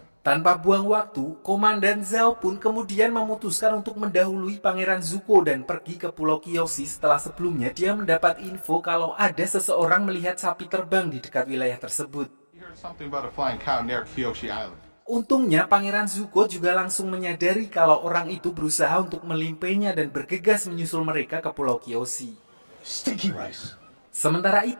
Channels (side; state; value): both; inverted; correlation -1.00